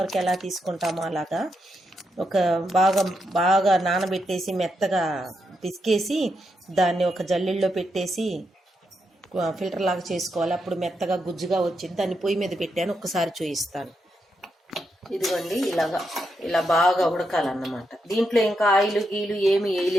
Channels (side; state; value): both; normal; correlation 0.83